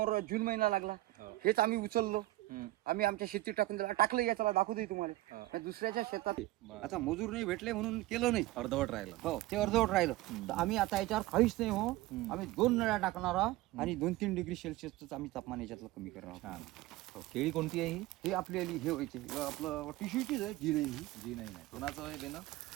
जून महिना लागला. हेच आम्ही उचललो. आम्ही आमच्या शेतीत टाकून दिला. टाकलं याच्याला दाखवतोय तुम्हाला. दुसऱ्याच्या शेतात आता मजूर नाही भेटले म्हणून केलं नाही. अर्धवट राहिलं. हो ते अर्धवट राहिलं. तर आम्ही आता याच्यावर काहीच नाही हो. आम्ही 2 नळ्या टाकणार आहोत आणि 2-3 डिग्री सेल्सिअसच आम्ही तापमान याच्यातलं कमी करणार आहोत. केळी कोणती आहे ही? हे आपल्याला हे व्हायचे आपलं टिश्यूचीच आहे जी नाही. जी नाही. कोणाचं आहे देणं?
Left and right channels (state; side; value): quieter; left; 17.6 dB